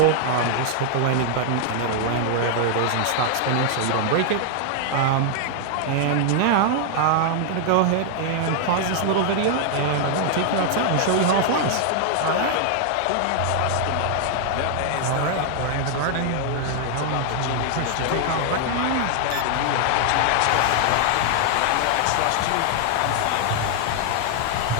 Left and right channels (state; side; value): different; both; correlation 0.00